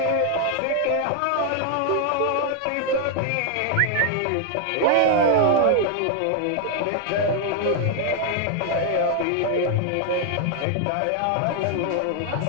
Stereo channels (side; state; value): both; different; correlation 0.00